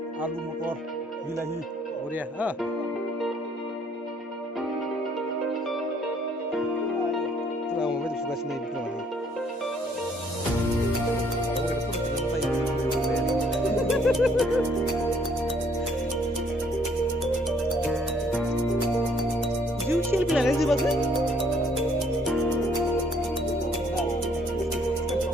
alu motor bilahi. Oh dia, दाबायदि सुगासिनो बेखौ माने ओरैनो फट' जिउ सेलफि लानाय जोबाखै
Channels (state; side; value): normal; both; correlation 0.64